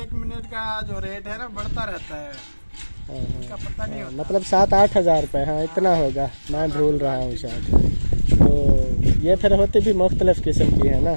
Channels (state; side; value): inverted; both; correlation -1.00